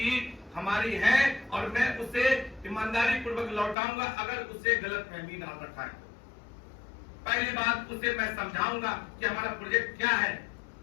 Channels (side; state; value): right; drops out; at 3.8 s